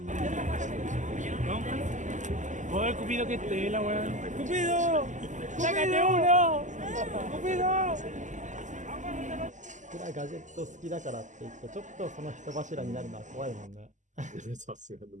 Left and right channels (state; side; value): late; left; 0.36 ms